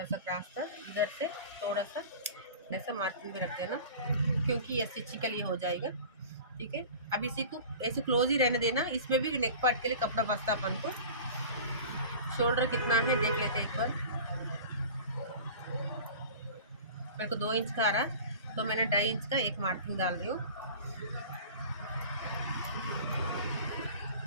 सा क्रॉस था, इधर से थोड़ा सा ऐसा मार्किंग भी रख देना, क्योंकि ये स्टिचिंग के लिए हो जाएगा। ठीक है, अब इसी को ऐसे क्लोज ही रहने देना। इसमें भी नेक पार्ट के लिए कपड़ा बचता अपन को। शोल्डर कितना है देख लेते हैं एक बार। मेरे को 2 इंच का आ रहा, तो मैंने 2.5 इंच का एक मार्किंग डाल रही हूँ।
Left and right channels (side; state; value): both; inverted; correlation -0.39